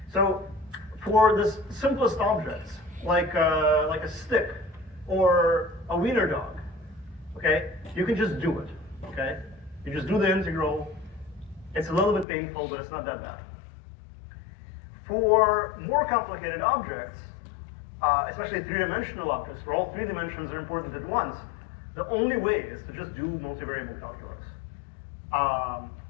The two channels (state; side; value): drops out; right; at 12.2 s